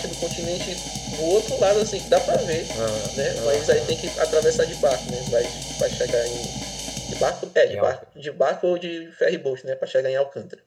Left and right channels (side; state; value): both; identical; correlation 1.00